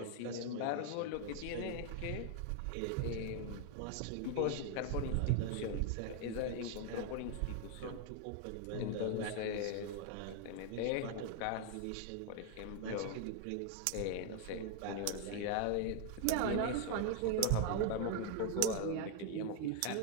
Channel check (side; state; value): both; different; correlation 0.00